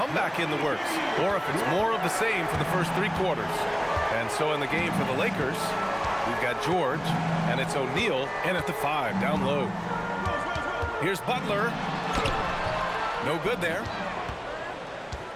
in the works or if it's more of the same for the first three quarters. And so in the game for the Lakers, we've got George, and it's O'Neal in at the 5, down low. Here's Butler. No good there.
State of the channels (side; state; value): both; identical; correlation 1.00